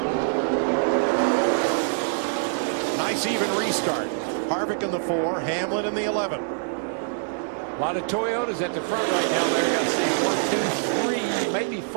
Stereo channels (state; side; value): silent; left; digital silence